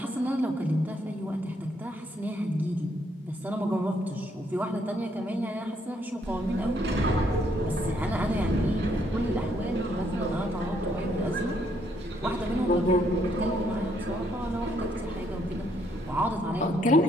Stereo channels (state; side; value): normal; both; correlation 0.71